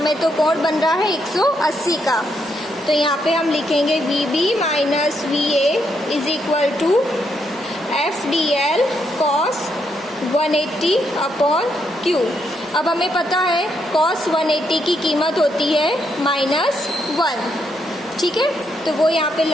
तो कोण बन रहा है 180 का। तो यहाँ पे हम लिखेंगे VB minus VA is equal to FDL cos 180 upon Q। अब हमें पता है cos 180 की कीमत होती है -1, ठीक है, तो वो यहाँ पे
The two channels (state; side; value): normal; both; correlation 0.78